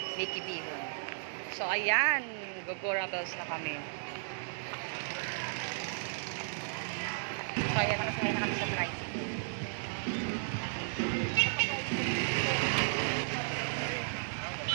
Bihon. So ayan, Gogora Bells na kami. So ayan, nakasakay na kami sa tricycle.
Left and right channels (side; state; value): left; silent; digital silence